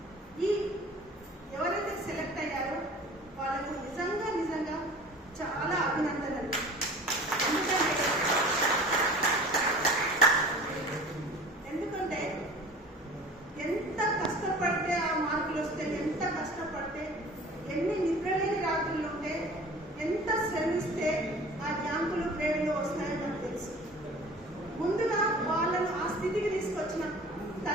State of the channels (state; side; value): normal; both; correlation 0.43